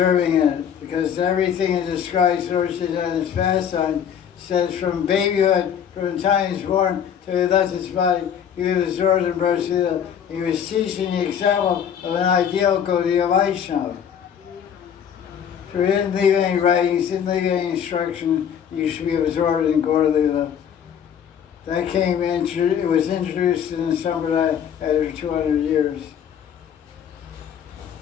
in it, because everything that describes Lord Chaitanya's pastime says from babyhood, from the time he was born till he left his body, he was absorbed in Braj Lila. He was teaching the example of an ideal Gaudiya Vaishnava. So he didn't leave any writings, didn't leave any instruction. You should be absorbed in Gaura Lila That it was introduced in the Sampradaya after 200 years.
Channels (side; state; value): right; quieter; 8.5 dB